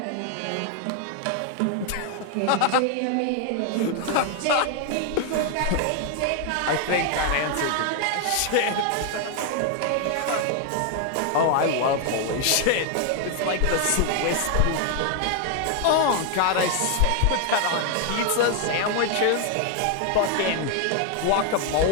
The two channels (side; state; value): both; different; correlation 0.00